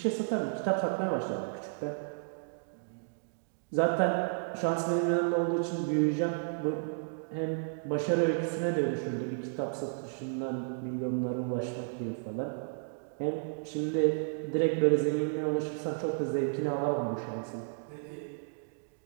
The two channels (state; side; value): silent; left; digital silence